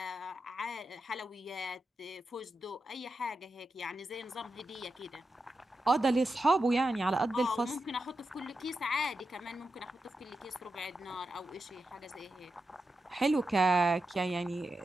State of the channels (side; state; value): both; normal; correlation 0.89